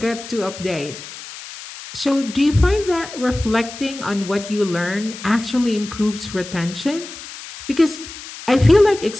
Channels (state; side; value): noise; left; hiss, 13 dB below the sound